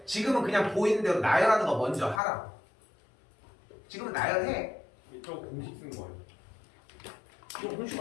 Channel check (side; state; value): right; drops out; at 2.2 s